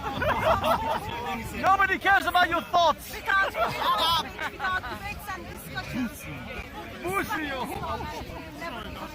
Nobody cares about your thoughts. We can't debates and discussions.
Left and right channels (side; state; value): both; identical; correlation 1.00